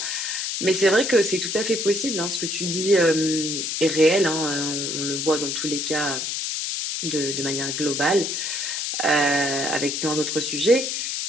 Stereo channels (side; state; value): left; noise; hiss, 2 dB below the sound